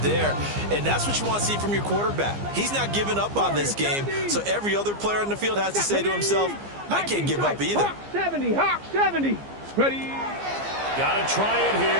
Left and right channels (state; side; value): late; left; 15 ms